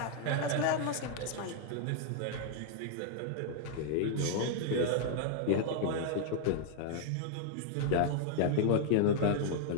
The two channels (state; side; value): different; both; correlation -0.01